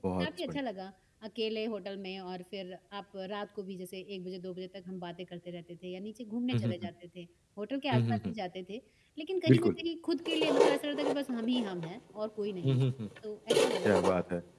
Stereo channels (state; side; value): identical; both; correlation 1.00